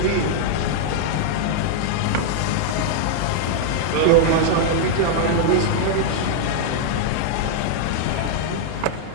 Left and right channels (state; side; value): different; both; correlation -0.01